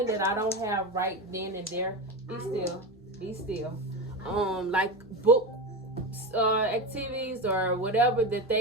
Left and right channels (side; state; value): both; normal; correlation 0.20